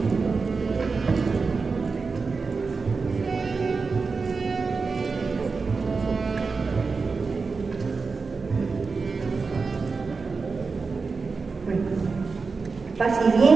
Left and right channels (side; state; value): left; quieter; 4.5 dB